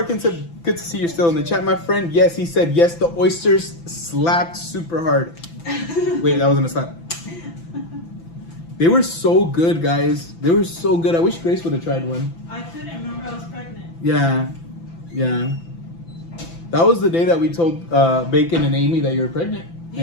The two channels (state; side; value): late; right; 5.9 ms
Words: Good to see you're still in the chat, my friend. Yes, he said yes, the oysters slapped super hard. Wait, that wasn't a slap. They were so good, guys. They were so good. I wish Grace would have tried one. I couldn't remember I was pregnant. Yeah. That was the day that we told Bacon and Amy that you were pregnant.